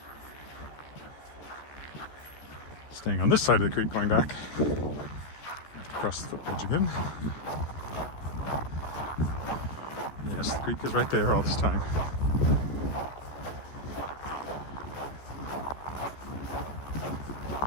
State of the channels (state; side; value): late; right; 14 ms